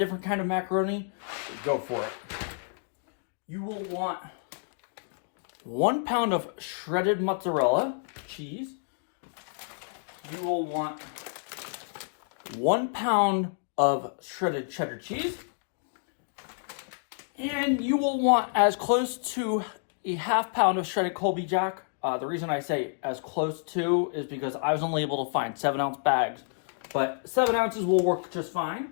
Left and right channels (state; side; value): silent; right; digital silence